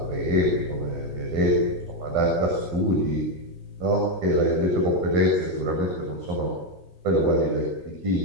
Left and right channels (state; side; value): normal; both; correlation 0.06